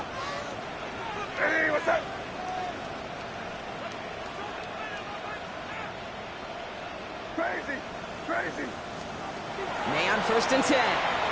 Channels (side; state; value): both; identical; correlation 1.00